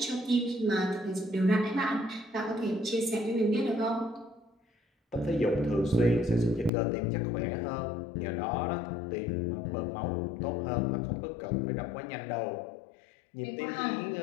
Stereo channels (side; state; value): right; drops out; at 6.7 s